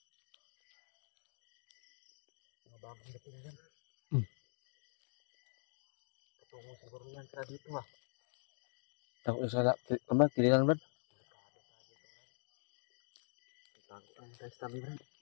Mga bagong dating yan. Patungo siguro yan sila dito ha. Takot sa kililan Brad? Takot ang tayo sa tabi, Brad.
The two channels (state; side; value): silent; right; digital silence